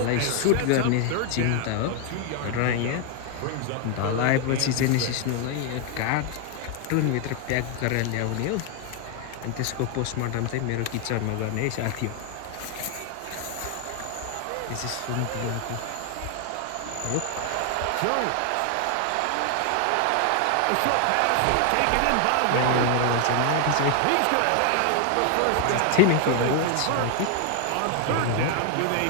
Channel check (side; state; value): both; different; correlation 0.00